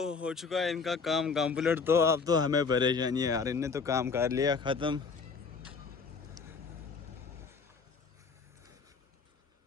हो चुका है इनका काम कंप्लीट। तो अब तो हमें परेशानी है यार, इनने तो काम कर लिया ख़त्म।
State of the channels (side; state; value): right; quieter; 5.0 dB